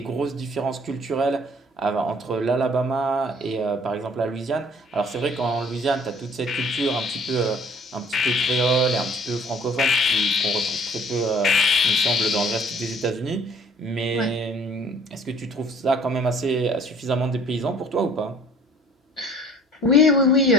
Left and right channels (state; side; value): normal; both; correlation 0.54